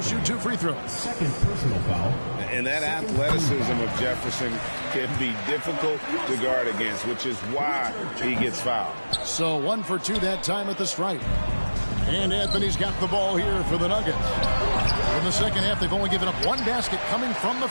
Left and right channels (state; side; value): inverted; both; correlation -1.00